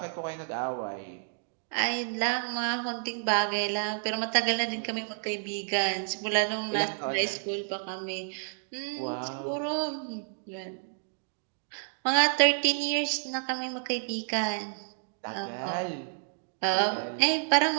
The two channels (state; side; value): silent; left; digital silence